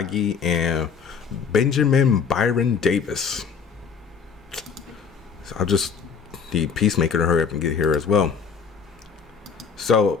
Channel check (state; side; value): quieter; right; 6.2 dB